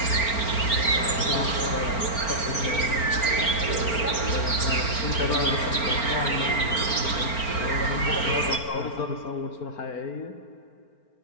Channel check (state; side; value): late; right; 4.4 ms